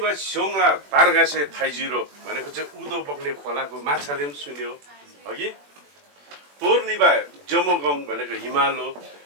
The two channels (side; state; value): left; late; 21 ms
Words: बा स्योङला तारगासे थाइजिरो भनेको चाहिँ उदो बग्ने खोलाको माछाले पनि सुन्यो अघि तोर्निबा जमोगङ भनेको हिमालो